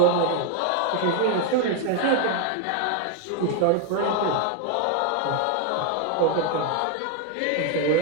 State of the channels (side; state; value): both; different; correlation 0.01